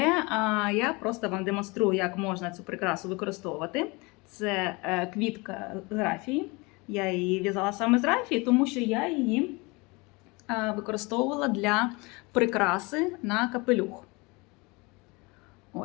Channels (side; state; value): right; quieter; 26.1 dB